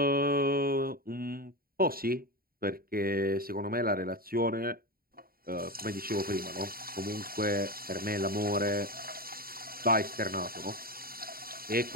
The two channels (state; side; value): late; left; 0.43 ms